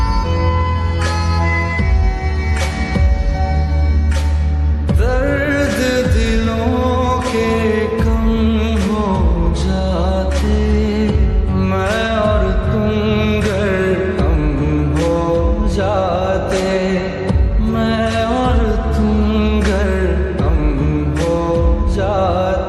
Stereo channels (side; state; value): both; identical; correlation 1.00